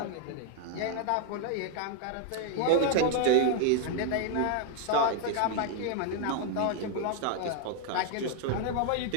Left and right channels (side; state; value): both; different; correlation 0.00